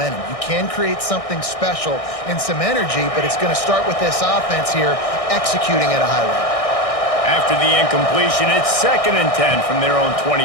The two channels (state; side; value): late; right; 1.6 ms